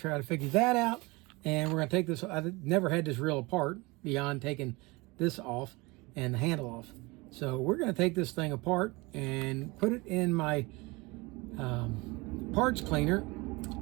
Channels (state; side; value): quieter; left; 24.5 dB